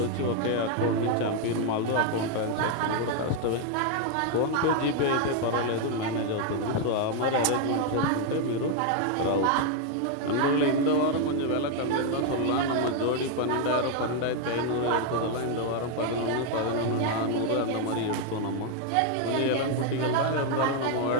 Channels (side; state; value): both; different; correlation 0.01